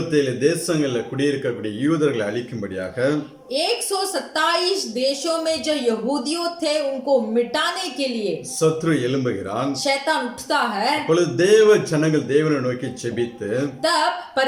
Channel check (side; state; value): both; identical; correlation 1.00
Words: தேசங்களில் குடியிருக்கக்கூடிய யூதர்களை அழிக்கும்படியாக 127 देशों में जो यहूदियों थे उनको मिटाने के लिए சத்ரு எழும்புகிறான். शैतान उठता है। அப்பொழுது தேவ ஜனங்கள் தேவனை நோக்கி ஜெபித்து तब